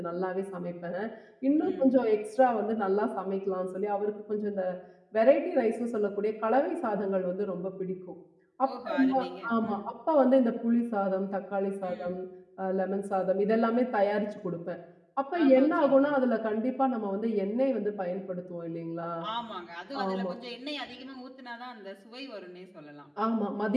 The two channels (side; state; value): both; identical; correlation 1.00